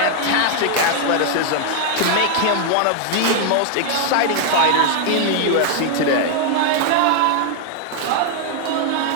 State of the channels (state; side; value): different; both; correlation 0.00